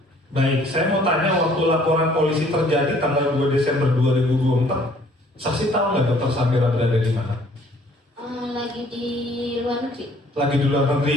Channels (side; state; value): both; normal; correlation 0.58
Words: Baik, saya mau tanya waktu laporan polisi terjadi tanggal 2 Desember 2024, saksi tahu nggak Dr. Samira berada di mana? Lagi di luar negeri. Lagi di luar negeri?